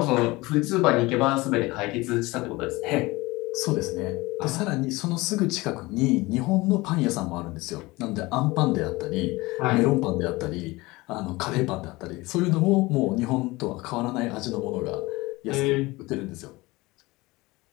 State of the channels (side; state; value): right; quieter; 21.7 dB